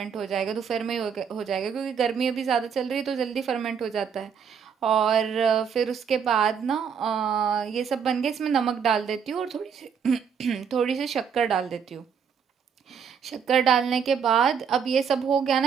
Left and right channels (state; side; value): quieter; left; 7.1 dB